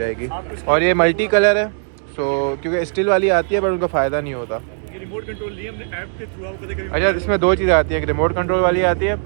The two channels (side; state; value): left; silent; digital silence